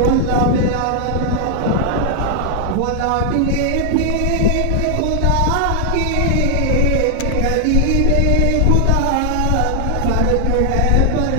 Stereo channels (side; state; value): both; different; correlation 0.00